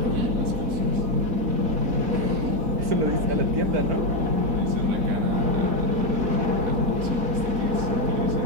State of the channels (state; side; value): late; left; 4.1 ms